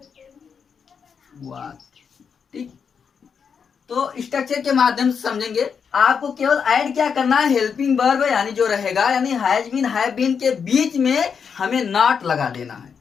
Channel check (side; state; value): right; quieter; 6.5 dB